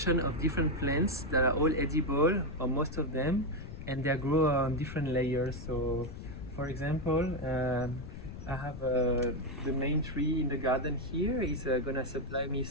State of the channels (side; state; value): left; noise; rumble, 11 dB below the sound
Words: of different plants that are all edible, or most of them, and they grow on different layers. So, for example, I have the main tree in the garden here is gonna supply me